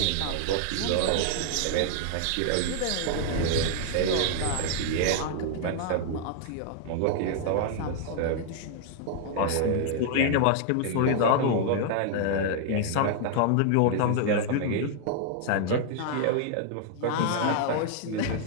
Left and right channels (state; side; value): different; both; correlation 0.00